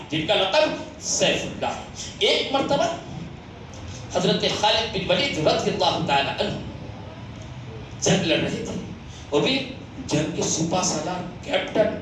ہے. ایک مرتبہ حضرت خالد بن ولید رضی اللہ تعالی عنہ جنگ لڑ رہے تھے, وہ بھی جنگ کے سپہ سالار کیپٹن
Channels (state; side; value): identical; both; correlation 1.00